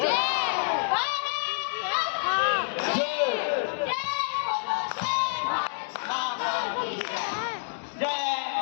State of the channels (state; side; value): silent; right; digital silence